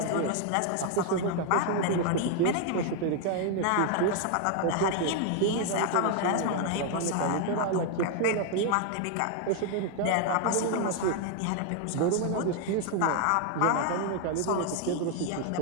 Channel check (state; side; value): different; both; correlation 0.00